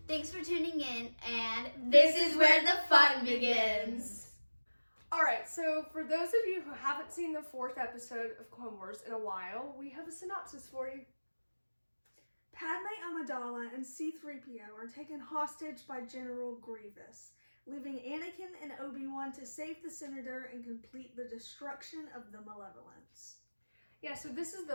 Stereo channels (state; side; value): inverted; both; correlation -1.00